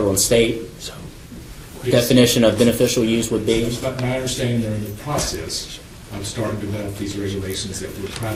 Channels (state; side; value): identical; both; correlation 1.00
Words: and state definition of beneficial use would be? But my understanding, they're in the process of starting to develop these regulations that would try